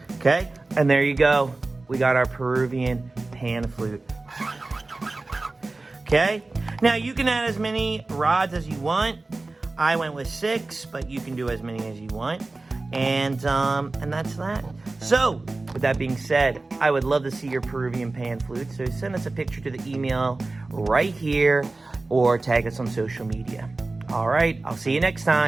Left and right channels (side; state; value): left; quieter; 3.3 dB